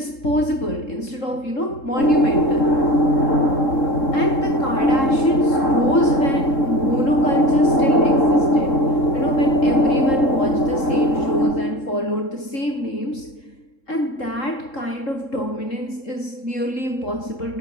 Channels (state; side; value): late; right; 3.7 ms